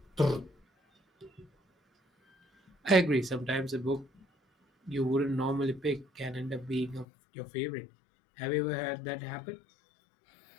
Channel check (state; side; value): drops out; right; at 7.1 s